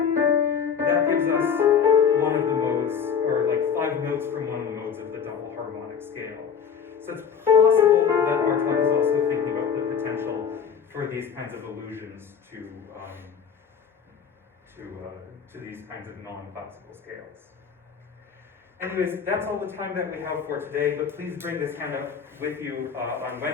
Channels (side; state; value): right; quieter; 6.9 dB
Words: that gives us one of the modes, or like 5 notes from one of the modes of the double harmonic scale. So it's possible that Bartók is also thinking about the potential for these kinds of allusions to these kinds of non-classical scales. scales. Anyways, that's all the time that we have for today, but please bring this handout with you on